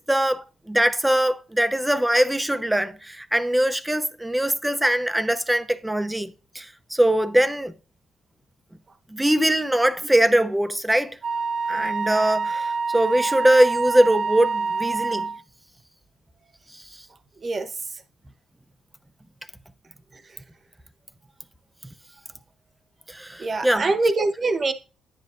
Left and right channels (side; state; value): both; normal; correlation 0.97